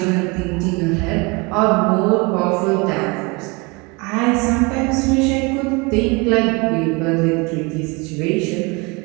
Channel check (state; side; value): quieter; left; 27.7 dB